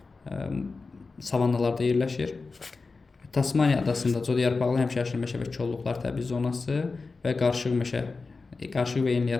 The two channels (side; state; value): right; quieter; 4.1 dB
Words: savannalarda yerləşir. Tasmaniya adasında codyarpaqlı həmişəyaşıl meşə və kolluqlar təbii zonası və qarışıq və